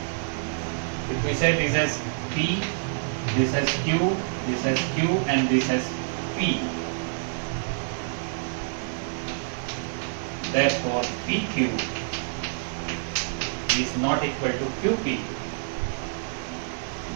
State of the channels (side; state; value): left; silent; digital silence